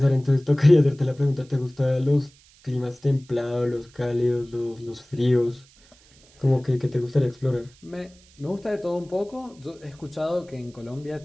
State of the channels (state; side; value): noise; right; hiss, 28 dB below the sound